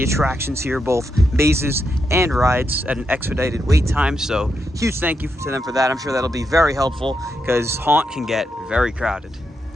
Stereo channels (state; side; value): normal; both; correlation 0.83